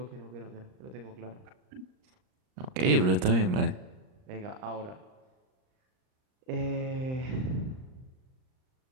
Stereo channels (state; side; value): late; left; 38 ms